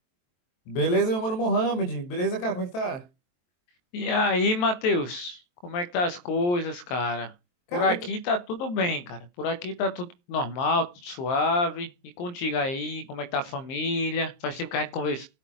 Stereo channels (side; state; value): right; late; 23 ms